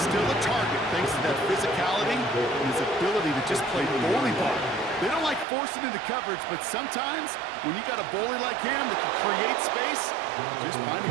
still a target thanks to that physicality and his ability to just play bully ball. They don't like forcing into coverage, but sometimes when you got a bully like him that can create space, just find a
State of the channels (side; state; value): left; drops out; at 5.5 s